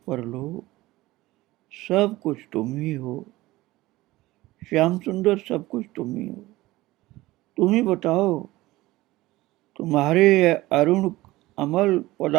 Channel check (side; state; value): left; quieter; 18.4 dB